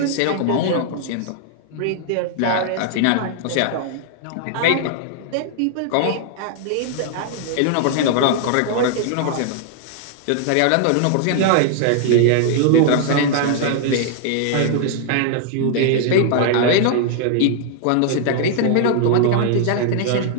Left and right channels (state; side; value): different; both; correlation -0.01